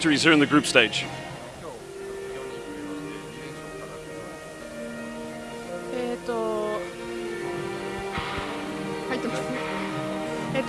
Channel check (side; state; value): both; identical; correlation 1.00